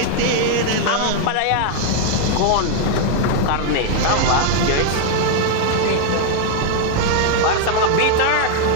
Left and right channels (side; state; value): both; different; correlation 0.00